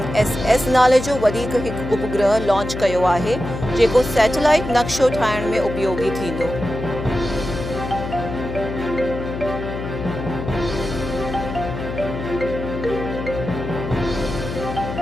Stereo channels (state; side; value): noise; left; hum, 7 dB below the sound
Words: नाले जो वधीक हिकु उपग्रह लॉन्च कयो आहे, जेको सैटेलाइट नक्शो ठाहिण में उपयोगी थींदो।